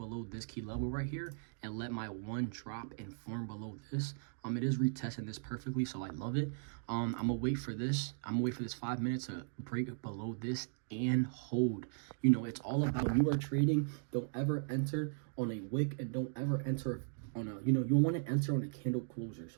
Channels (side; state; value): left; silent; digital silence